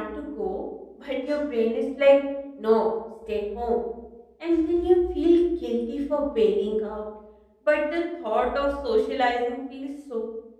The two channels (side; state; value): both; identical; correlation 1.00